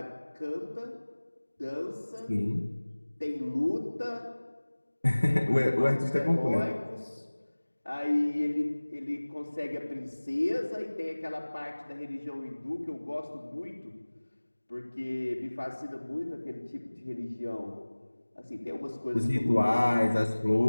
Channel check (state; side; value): inverted; both; correlation -1.00